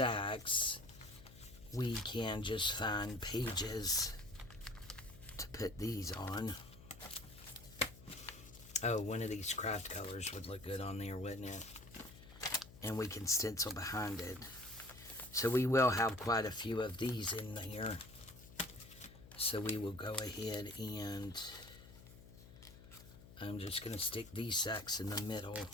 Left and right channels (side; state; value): left; noise; hum, 18 dB below the sound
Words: we can just find pages to put these on. Oh, one of these craft colors would look good on there, wouldn't it? And we can stencil behind it. So we will have quite a few of these in there. So we will go ahead and I'm just going to stick these sacks in the middle.